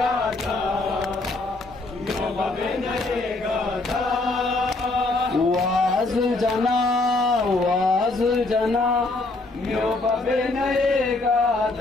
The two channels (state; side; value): quieter; right; 3.2 dB